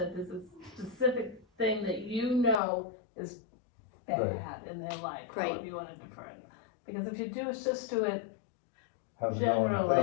there's a specific thing that you know is bad in their life. Right. However you want to defer it. Because if you just do it, how's it going? They generally,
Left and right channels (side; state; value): right; drops out; at 2.6 s